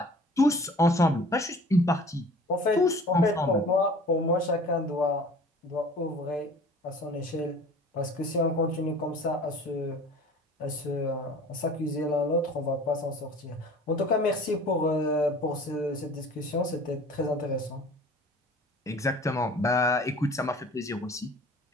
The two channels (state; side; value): normal; both; correlation 0.46